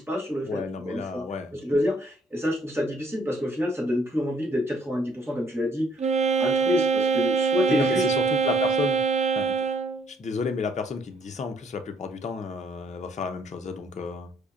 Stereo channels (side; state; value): both; normal; correlation 0.66